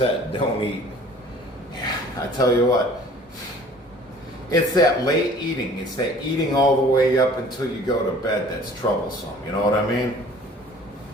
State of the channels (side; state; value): both; normal; correlation 0.50